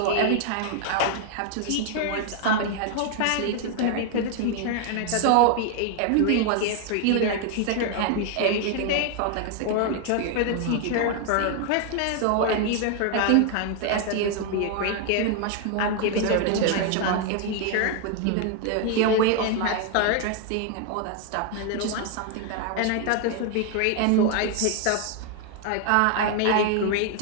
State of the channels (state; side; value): different; both; correlation 0.00